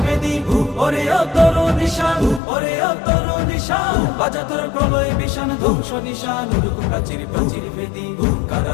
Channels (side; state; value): right; drops out; at 2.4 s